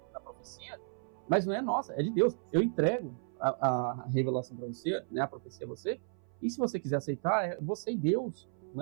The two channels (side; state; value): left; silent; 55 dB below the other